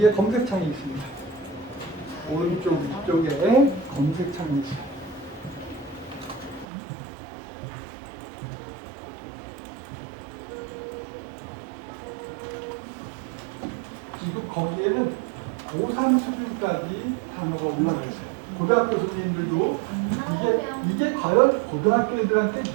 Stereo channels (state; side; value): drops out; left; at 6.7 s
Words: 검색창이 있습니다. 오른쪽 위쪽에 검색창이 있어요. 지금 거기에는 고3 수준까지 단어가 올라가 있어요. 고등학교 선생님들도 이게 과연 고등학교 애들한테